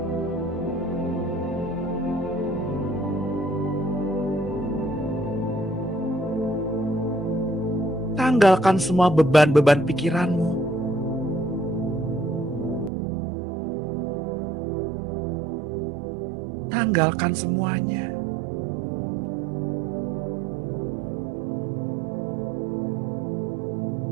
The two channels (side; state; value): left; drops out; at 12.9 s